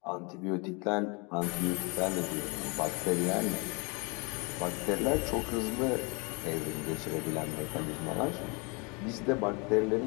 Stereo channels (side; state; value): right; quieter; 30.7 dB